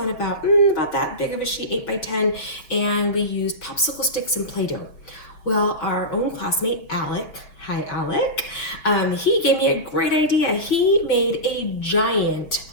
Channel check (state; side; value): late; right; 5.7 ms